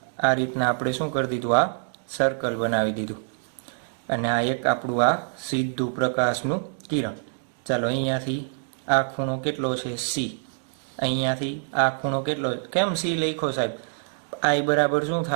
આ રીતના આપણે શું કરી દીધું, આ સર્કલ બનાવી દીધું, અને આ એક આપણું આ સીધું પ્રકાશનું કિરણ. ચાલો અહીંયાથી આ ખૂણો કેટલો છે, સી. અહીંયાથી આ ખૂણો કેટલો, કેમ સી લખ્યો સાહેબ, આઈ બરાબર શું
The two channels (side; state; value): left; silent; digital silence